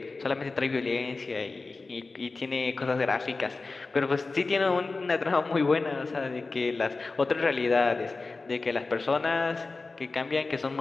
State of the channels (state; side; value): quieter; right; 3.8 dB